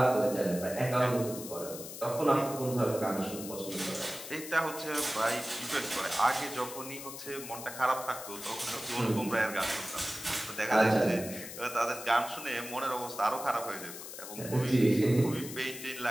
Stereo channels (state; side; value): noise; left; hiss, 11 dB below the sound